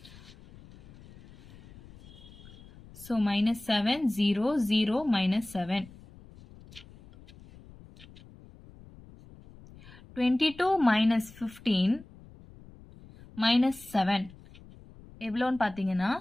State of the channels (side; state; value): left; noise; rumble, 21 dB below the sound